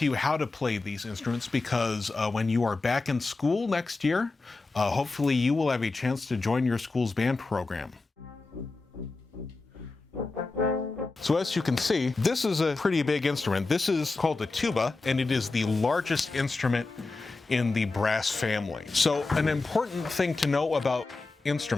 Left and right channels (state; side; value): quieter; right; 3.6 dB